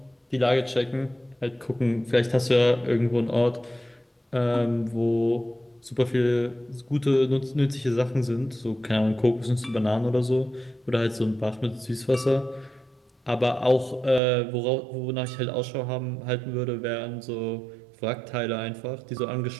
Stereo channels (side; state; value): left; drops out; at 14.2 s